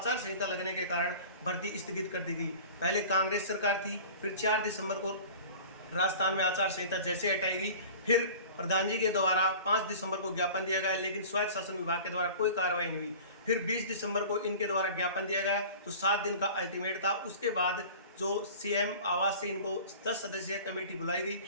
संहिता लगने के कारण भर्ती स्थगित कर दी गई। पहले कांग्रेस सरकार थी, फिर 4 दिसंबर को राजस्थान में आचार संहिता जैसे हटाई गई, फिर प्रधान जी के द्वारा 5 दिसंबर को ज्ञापन दिया गया, लेकिन स्वायत्त शासन विभाग के द्वारा कोई कार्रवाई नहीं हुई। फिर 20 दिसंबर को इनके द्वारा ज्ञापन दिया गया, तो 7 दिन का अल्टीमेट था। उसके बाद जो सीएम आवास से इनको 10 सदस्यीय कमेटी बुलाई गई,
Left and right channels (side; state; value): both; inverted; correlation -0.40